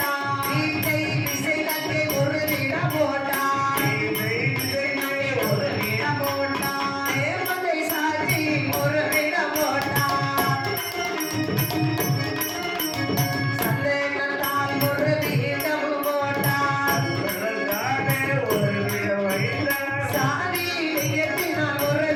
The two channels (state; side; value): identical; both; correlation 1.00